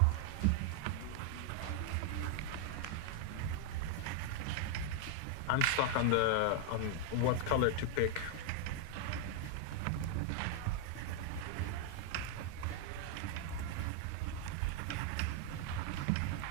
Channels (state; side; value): different; both; correlation 0.00